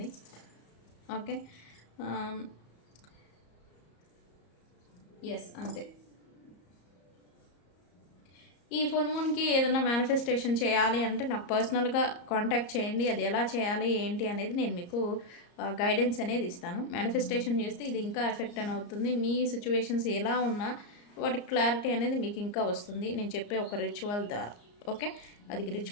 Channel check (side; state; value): right; late; 34 ms